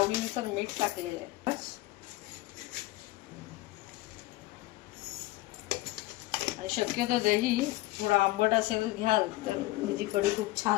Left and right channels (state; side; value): quieter; right; 18.5 dB